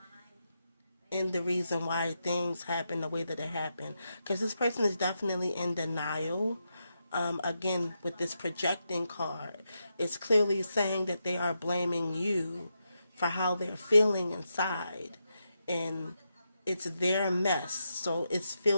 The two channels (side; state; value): both; inverted; correlation -0.85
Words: in the reason why things happen the way that it happened. Because this person is definitely in denial. Again, with this projecting card, it's clearly saying that they are blaming you for how they're feeling inside. And it's their mess. So it